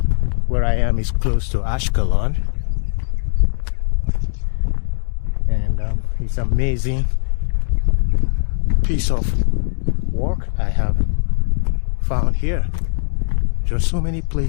Where I am is close to Ashkelon, and it's amazing piece of work I have found here. There are so many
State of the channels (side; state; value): right; silent; digital silence